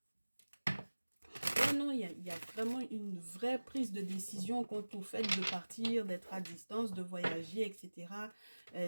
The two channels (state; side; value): inverted; both; correlation -1.00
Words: Non, il y a vraiment une vraie prise de décision quant au fait de partir, d'être à distance, de voyager, etc.